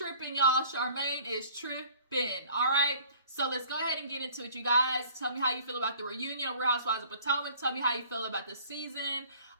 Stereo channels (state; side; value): inverted; both; correlation -0.52